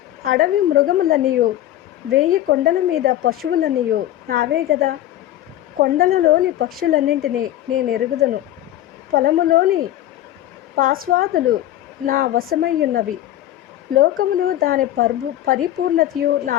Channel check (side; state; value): right; quieter; 13.2 dB